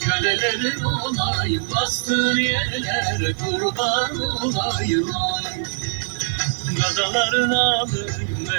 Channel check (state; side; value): silent; left; digital silence